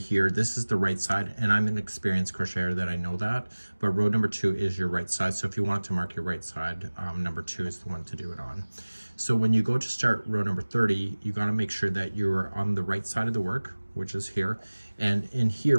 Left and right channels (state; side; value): inverted; both; correlation -1.00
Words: this is the right side, and I'm an experienced crocheter that I know that, but row number 2 is your right side. So if you want to mark your right side, number 2 is the one to do it on. So when you go to start row number 30, you got to make sure that you're on the right side of the work, which is here. And in